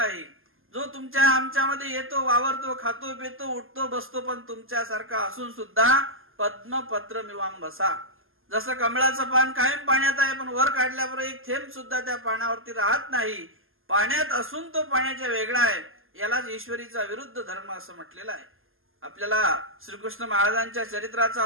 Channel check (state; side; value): late; left; 0.60 ms